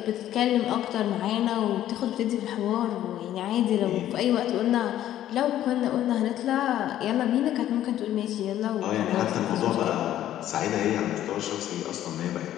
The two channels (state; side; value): quieter; right; 12.3 dB